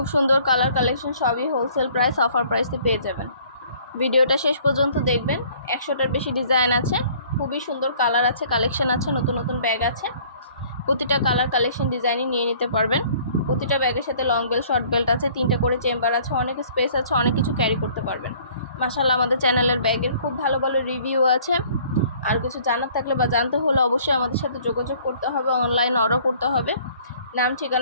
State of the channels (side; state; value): both; inverted; correlation -0.55